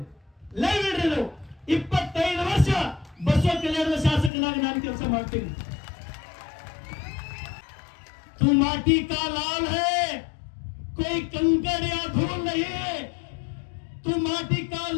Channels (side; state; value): right; drops out; at 4.3 s